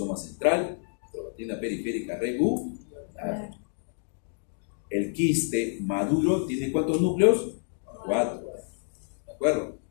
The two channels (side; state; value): right; silent; digital silence